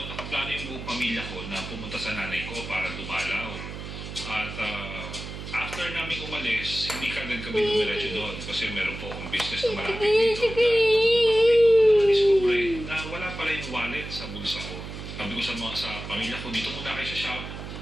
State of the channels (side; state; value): right; noise; hum, 9 dB below the sound